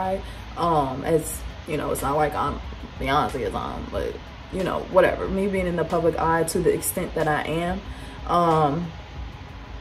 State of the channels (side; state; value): both; identical; correlation 1.00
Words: As you know, it's not like I'm Beyonce is on, but you know, whatever, me being in the public eye to the extent that I am,